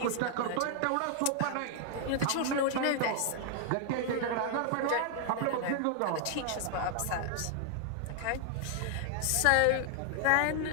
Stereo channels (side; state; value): both; different; correlation 0.00